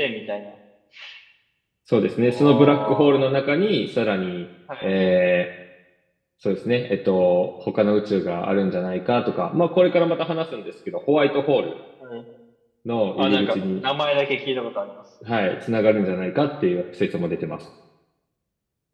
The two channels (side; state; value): both; identical; correlation 1.00